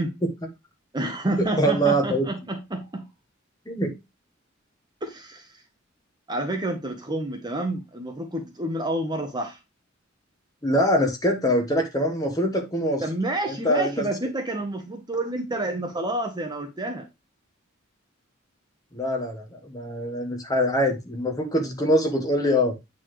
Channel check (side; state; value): both; normal; correlation 0.35